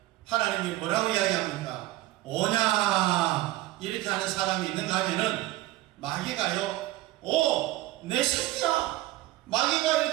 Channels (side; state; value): left; quieter; 17.0 dB